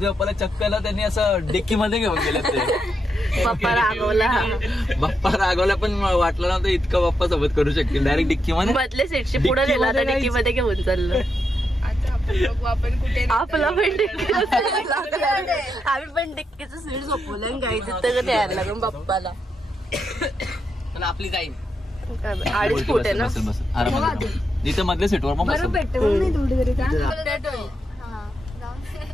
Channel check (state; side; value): normal; both; correlation 0.83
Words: बाप्पाला चक्कला त्यांनी असं डिक्की मध्ये घेऊन गेले ते. बाप्पा रागवला पण वाटलं नव्हतं इतकं बाप्पा सोबत करू शकतील. डायरेक्ट डिक्की मध्ये बदले सीटशी पुढे गेला तर डिक्की मध्ये घेऊन चाललं. आपण कुठे आपला पण डिक्की आम्ही पण डिक्कीचं सीट झोपवलं गायचं तर द्यायला लागून बाप्पाला. आपली जाईल 2.5 फूट आहे ना. आरामात इथे मधल्या सीटवर मग बसेल.